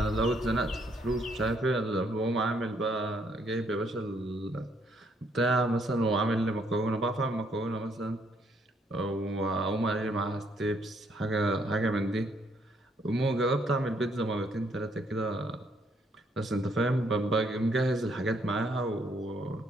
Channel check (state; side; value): normal; both; correlation 0.70